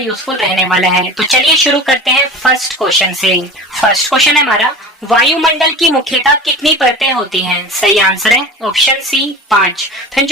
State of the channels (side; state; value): both; normal; correlation 0.35